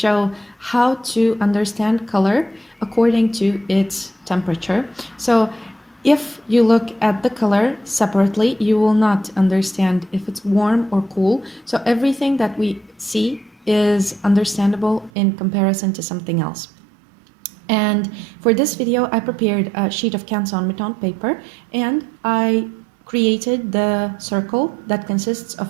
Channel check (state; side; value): drops out; left; at 15.1 s